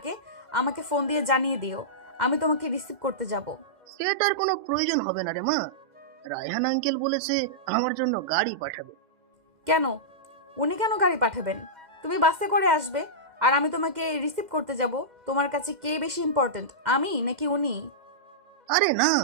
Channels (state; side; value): late; left; 2.1 ms